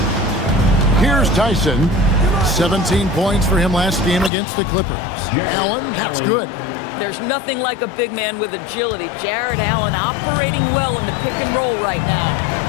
Here's Tyson. 17 points for him last game against the Clippers. Allen, that's good. There's nothing like a big man with agility. Jared Allen operating well in the pick and roll right now.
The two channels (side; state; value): right; drops out; at 4.3 s